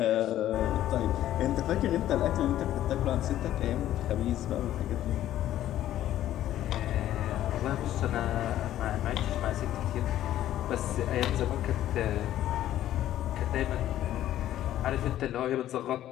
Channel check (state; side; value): quieter; right; 12.7 dB